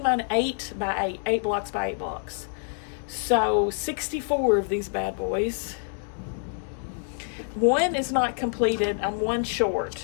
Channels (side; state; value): right; silent; 60 dB below the other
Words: mine 8 by 8, 8 blocks by 8 blocks. So 64 of these bad boys. One is not completed. I'm one